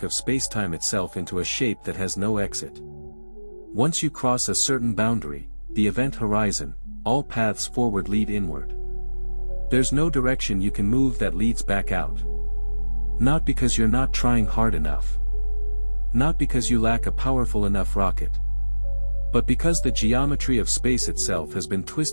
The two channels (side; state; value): both; inverted; correlation -1.00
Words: of space-time itself into a shape that has no exit. Once you cross a certain boundary, the event horizon, all paths forward lead inward. There's no direction you can move that leads back out. Not because you're not trying hard enough. Not because you lack a powerful enough rocket. But because the geometry of space itself has been